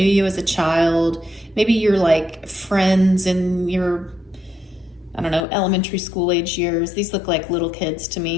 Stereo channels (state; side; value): drops out; right; at 5.4 s